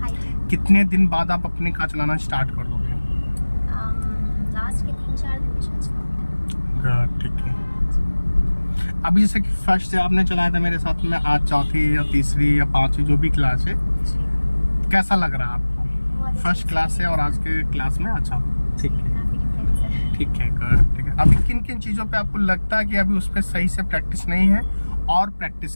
कितने दिन बाद आप अपनी कार चलाना स्टार्ट कर दोगे? लास्ट के 3-4 दिन में गुड, ठीक है। अभी जैसे कि फर्स्ट से आपने चलाया था मेरे साथ में, आज चौथी या तीसरी या पांचवी जो भी क्लास है, कैसा लग रहा है आपको फर्स्ट क्लास से और आज के क्लास में? अच्छा, ठीक है, ठीक है, गुड, ठीक है। अभी किन किन चीज़ों पे आपको लगता है कि अभी उस पर सही से प्रैक्टिस नहीं है और प्रैक्टिस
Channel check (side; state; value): both; inverted; correlation -1.00